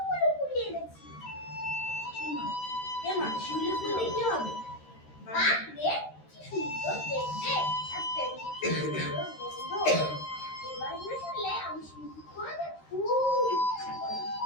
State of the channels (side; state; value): right; late; 13 ms